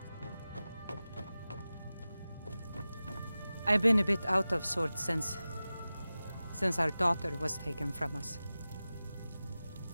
I've been a bit out of sorts since our daughter was taken from us.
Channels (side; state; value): both; inverted; correlation -0.96